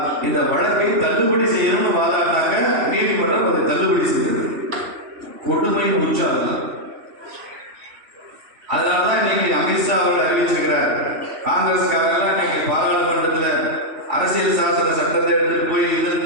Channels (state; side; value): late; left; 3.1 ms